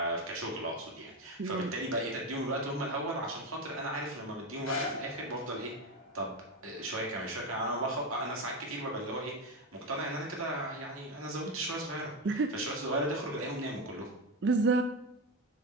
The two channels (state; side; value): normal; both; correlation 0.14